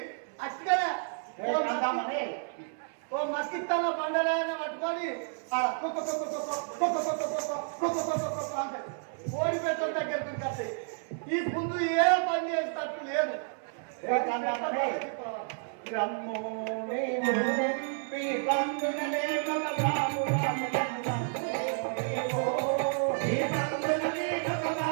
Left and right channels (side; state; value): left; silent; 57 dB below the other